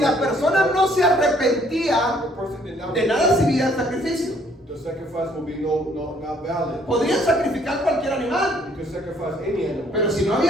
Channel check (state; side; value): normal; both; correlation 0.62